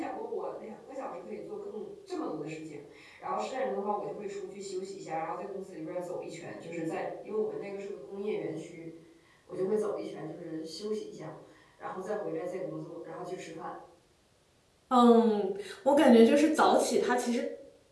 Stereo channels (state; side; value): identical; both; correlation 1.00